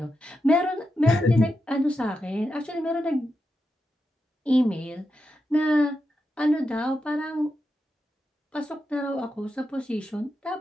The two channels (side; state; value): both; normal; correlation 0.88